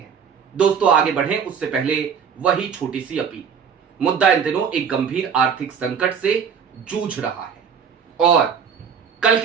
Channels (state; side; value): quieter; left; 7.0 dB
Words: दोस्तों, आगे बढ़ें उससे पहले वही छोटी सी अपील। मुद्दा इन दिनों एक गंभीर आर्थिक संकट से जूझ रहा है, और कल